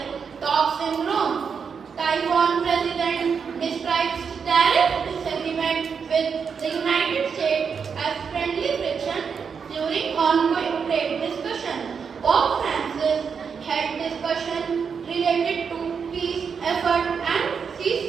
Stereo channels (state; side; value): quieter; left; 6.2 dB